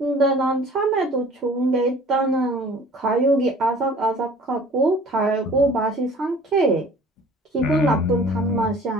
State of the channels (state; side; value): normal; both; correlation 0.48